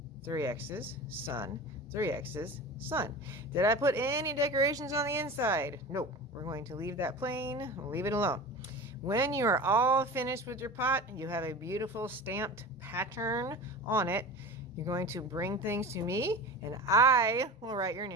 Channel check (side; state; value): both; normal; correlation 0.33